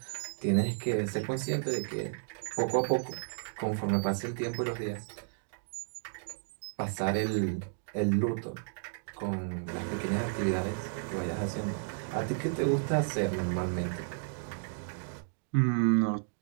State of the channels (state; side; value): silent; left; digital silence